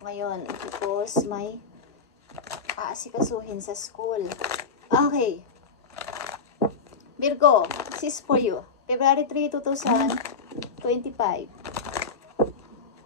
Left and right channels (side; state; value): right; quieter; 4.9 dB